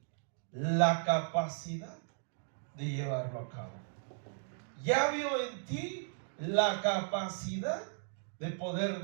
la capacidad de llevarlo a cabo. Ya vio en ti la capacidad de poder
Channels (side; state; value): left; silent; digital silence